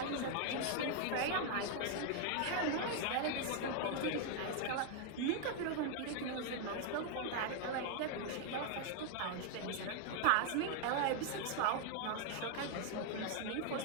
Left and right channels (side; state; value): both; different; correlation 0.00